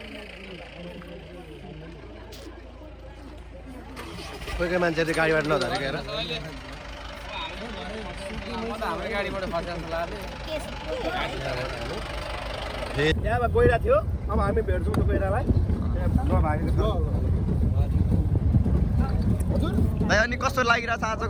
कोही कोही मान्छेले गाडीबाट नझरेको हेर हाम्रो गाडीबाट फसेको त्यहाँबाट गइरहेको थियो अब हामी भेट्छौँ त गइरहेलाई भाइ अनि कस्तो लागिरहेछ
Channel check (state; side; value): identical; both; correlation 1.00